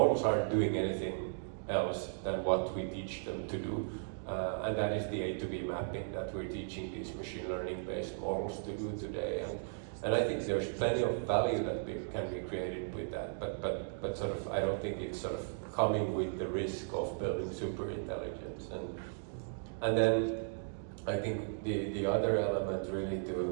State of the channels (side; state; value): left; silent; digital silence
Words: aren't doing anything else than what we teach them to do. And that is the A to B mapping that we're teaching these machine learning based models to do today. And I think there's plenty of value that can be created with that, but sort of I don't think it's sort of coming with the risk of building super intelligence. And then I think the other element really